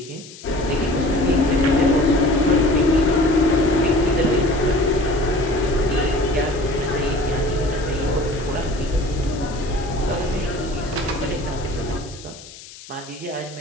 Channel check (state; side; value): noise; left; hiss, 18 dB below the sound